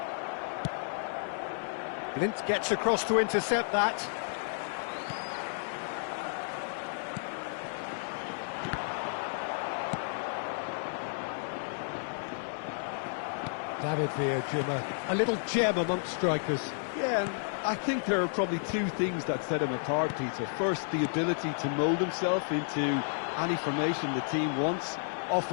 Clint gets across to intercept that. David Villa, a little gem amongst strikers. Yeah, and I think there are probably two things that set him apart, Peter. First, the ability to mould himself into any formation the team wants,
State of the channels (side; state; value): right; silent; 57 dB below the other